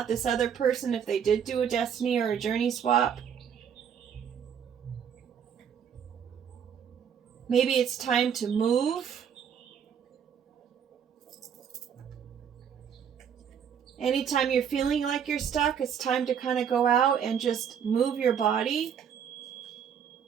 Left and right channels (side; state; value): left; quieter; 8.0 dB